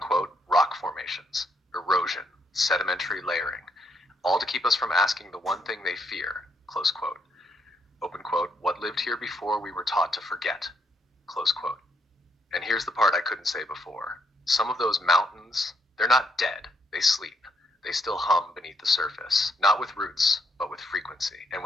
rock formations, erosion, sedimentary layering, all to keep us from asking the one thing they fear. Close quote. Open quote, what lived here before we were taught to forget. Close quote. And here's the part I couldn't say before. Some of those mountains, they're not dead, they sleep. They still hum beneath the surface, not with roots, but with frequency. And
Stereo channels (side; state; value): both; normal; correlation 0.75